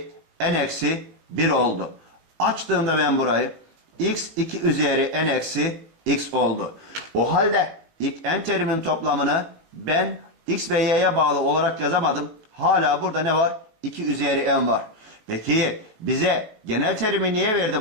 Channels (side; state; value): left; late; 18 ms